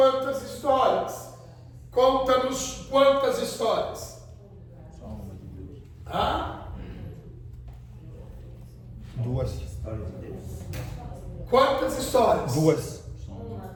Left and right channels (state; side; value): identical; both; correlation 1.00